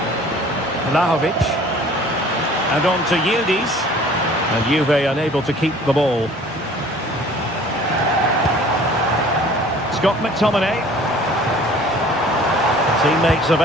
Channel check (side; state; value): both; normal; correlation 0.50